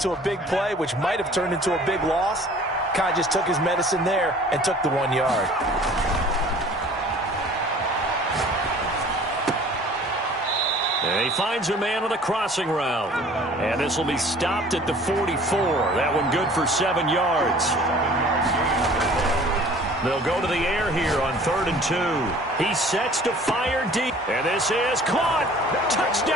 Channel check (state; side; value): normal; both; correlation 0.49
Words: a big play, which might have turned into a big loss, kind of just took his medicine there and took the 1 yard. And he finds a man on the crossing route. And this will be stopped at the 44. That one good for 7 yards. They'll go to the air here on 3rd and 2. He sets to fire deep. And this is caught.